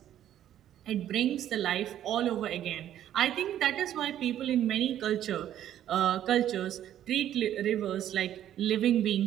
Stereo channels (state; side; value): quieter; left; 11.3 dB